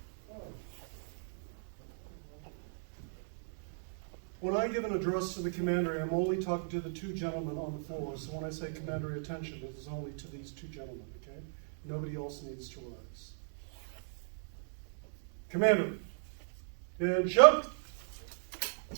When I give an address to the commandery, I'm only talking to the two gentlemen on the floor. So when I say commandery attention, it is only to these two gentlemen, okay? Nobody else needs to rise. Commander, attention.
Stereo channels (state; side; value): silent; left; digital silence